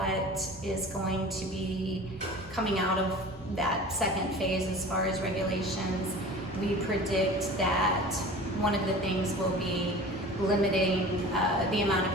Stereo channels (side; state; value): both; normal; correlation 0.39